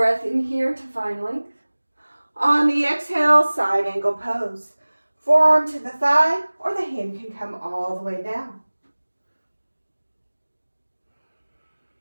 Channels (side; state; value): both; inverted; correlation -1.00